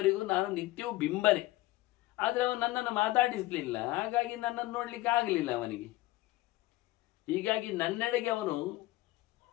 ನಾನು ನಿತ್ಯವೂ ಬಿಂಬನೆ. ಆದರೆ ಅವನು ನನ್ನನ್ನು ಮಾತಾಡಿಸಲಿಲ್ಲ, ಹಾಗಾಗಿ ನನ್ನನ್ನು ನೋಡ್ಲಿಕ್ಕೆ ಆಗಲಿಲ್ಲ ಅವನಿಗೆ. ಹೀಗಾಗಿ ನನ್ನೆಡೆಗೆ ಅವನು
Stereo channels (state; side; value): quieter; right; 17.9 dB